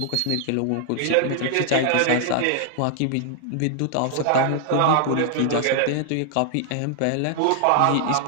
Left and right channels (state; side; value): different; both; correlation 0.00